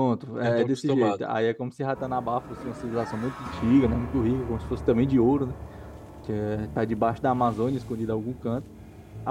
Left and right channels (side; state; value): both; identical; correlation 1.00